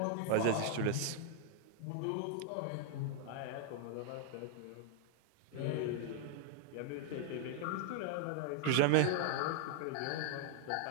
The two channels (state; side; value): different; both; correlation 0.00